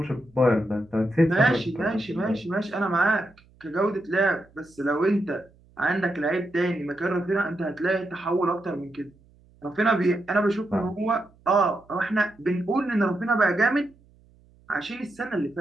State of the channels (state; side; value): noise; right; hum, 29 dB below the sound